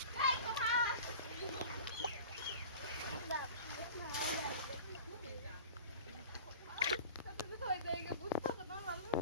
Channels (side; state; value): both; inverted; correlation -0.38